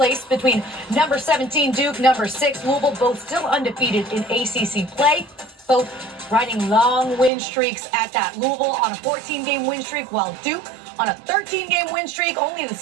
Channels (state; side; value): drops out; left; at 7.3 s